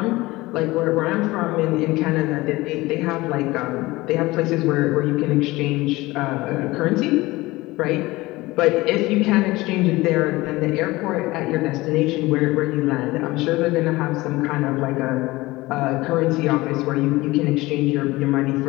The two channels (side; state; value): right; quieter; 20.1 dB